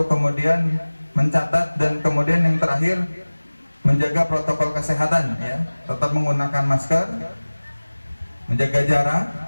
kemudian mencatat, dan kemudian yang terakhir menjaga protokol kesehatan ya, tetap menggunakan masker, menjaga jarak,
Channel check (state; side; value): inverted; both; correlation -1.00